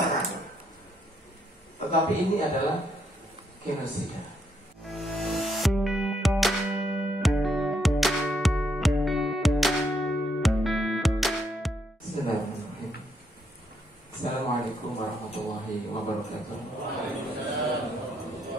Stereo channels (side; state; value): both; normal; correlation 0.75